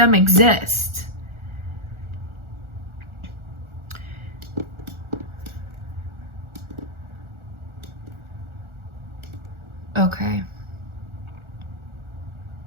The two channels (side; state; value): left; late; 1.4 ms